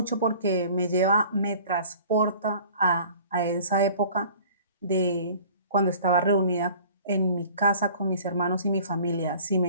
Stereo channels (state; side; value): inverted; both; correlation -0.48